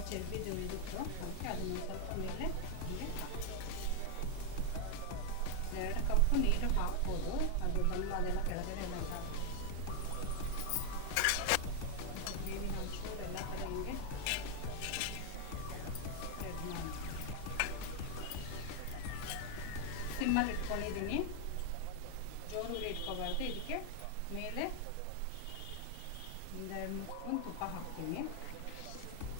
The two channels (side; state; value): both; different; correlation 0.00